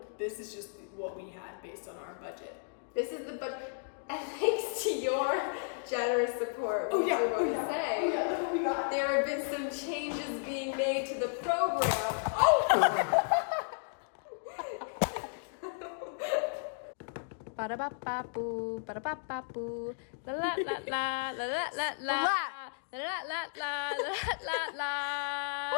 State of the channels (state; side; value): silent; right; digital silence